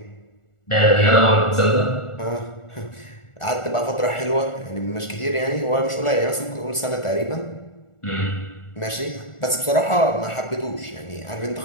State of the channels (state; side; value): late; right; 1.4 ms